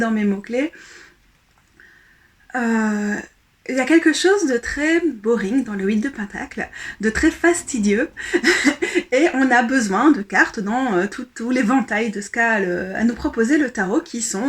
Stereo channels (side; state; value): both; identical; correlation 1.00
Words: mes mots-clés. Euh, il y a quelque chose de très boring dans le 8 de Pentacle, de très fastidieux, et on a besoin de cartes dans tout l'éventail de ce qu'a à nous proposer le tarot, qui